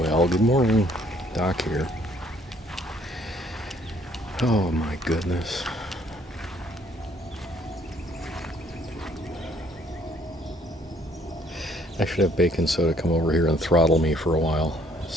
good morning. Doc here. Oh my goodness. I should have baking soda come over here and throttle me for a while.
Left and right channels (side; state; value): both; normal; correlation 0.63